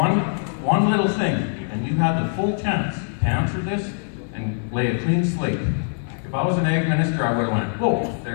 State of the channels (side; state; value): right; silent; 64 dB below the other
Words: little thing, and you had the full chance to answer this and lay a clean slate. If I was an ag minister, I would have went, whoa,